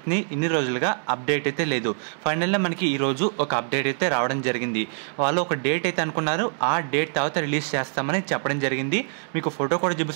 ఇన్ని రోజులుగా అప్డేట్ అయితే లేదు. ఫైనల్గా మనకి ఈరోజు ఒక అప్డేట్ అయితే రావడం జరిగింది. వాళ్ళు ఒక డేట్ అయితే అనుకున్నారు, ఆ డేట్ తర్వాత రిలీజ్ చేస్తామని చెప్పడం జరిగింది. మీకు ఫోటో కూడా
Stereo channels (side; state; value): left; silent; 59 dB below the other